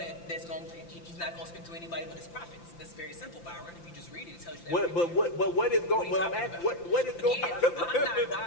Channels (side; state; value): right; late; 5.9 ms